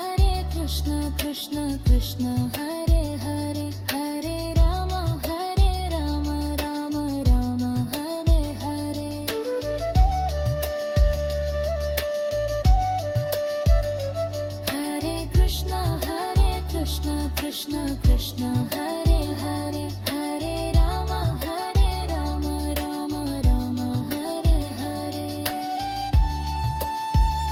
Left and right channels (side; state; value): both; identical; correlation 1.00